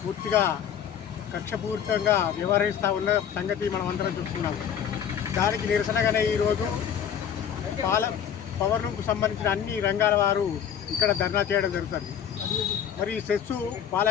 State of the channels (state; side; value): quieter; right; 8.7 dB